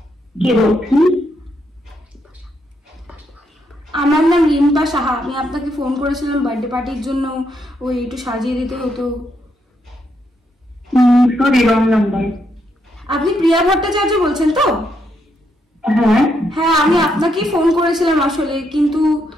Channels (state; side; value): normal; both; correlation 0.78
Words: কে বলছেন? আমার নাম রিম্পা সাহা। আমি আপনাকে ফোন করেছিলাম বার্থডে পার্টির জন্য, ওই একটু সাজিয়ে দিতে হতো। Sorry, wrong number. আপনি প্রিয়া ভট্টাচার্য বলছেন তো? হ্যাঁ হ্যাঁ, আমি আপনাকেই ফোন করেছিলাম আসলে, কিন্তু